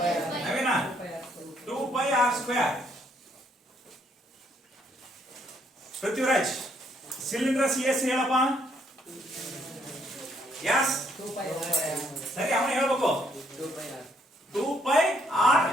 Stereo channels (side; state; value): both; normal; correlation 0.69